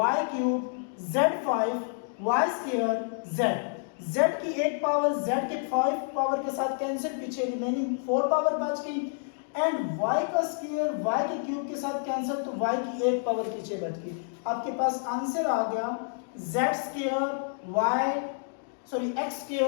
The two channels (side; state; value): right; silent; 59 dB below the other